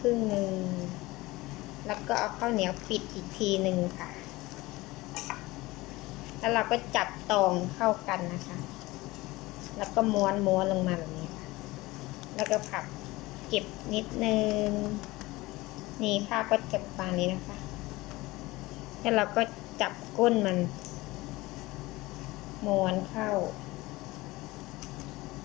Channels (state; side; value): quieter; right; 20.3 dB